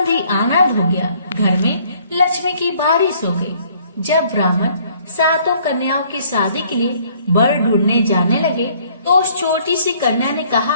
ही आनंद हो गया। घर में लक्ष्मी की बारिश हो गई। जब ब्राह्मण 7 कन्याओं की शादी के लिए वर ढूंढने जाने लगे तो उस छोटी सी कन्या ने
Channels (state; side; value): inverted; both; correlation -0.61